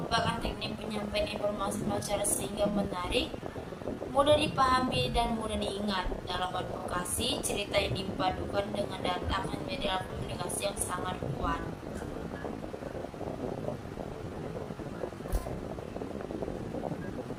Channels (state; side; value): identical; both; correlation 1.00